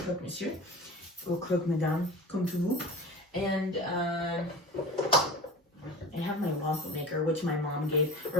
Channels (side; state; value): both; normal; correlation 0.34